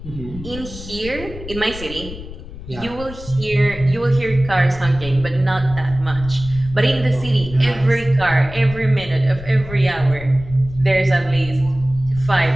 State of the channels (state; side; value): noise; left; rumble, 13 dB below the sound